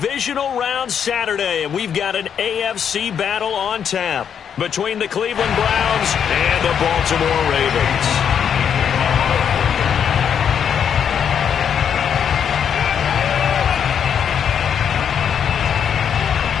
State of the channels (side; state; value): right; quieter; 8.0 dB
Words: Round Saturday, and we've got an AFC battle on tap between the Cleveland Browns and the Baltimore Ravens.